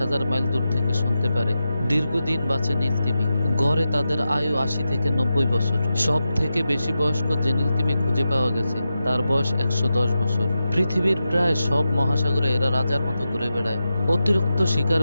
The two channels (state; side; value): inverted; both; correlation -0.90